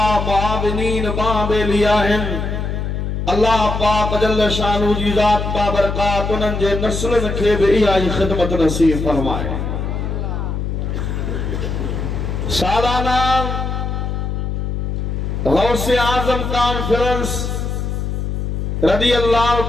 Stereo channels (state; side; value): noise; left; hum, 2 dB below the sound